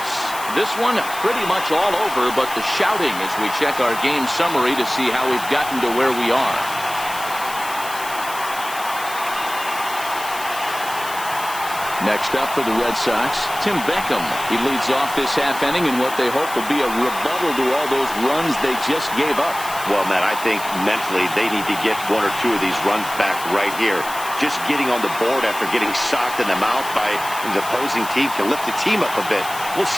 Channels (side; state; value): left; noise; hiss, 12 dB below the sound